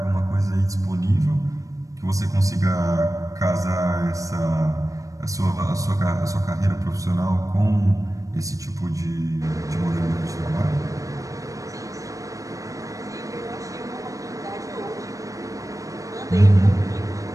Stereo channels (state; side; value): late; left; 0.16 ms